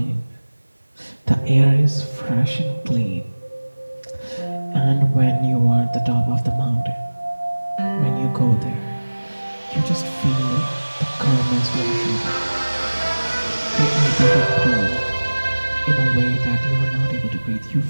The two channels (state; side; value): inverted; both; correlation -1.00